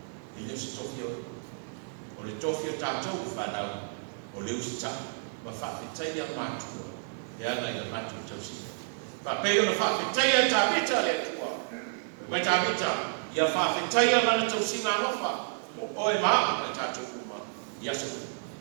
ile se tofi o le tofi tato fa na o le usta ma fa fitaya ma tu. Ya la ile ma tu tosi. Papel na fa fitaya tabita le tua. Ma tabita ya fa fitaya na tosi na rofa. O e ma ma tato kuma. Ya so.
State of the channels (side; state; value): left; silent; digital silence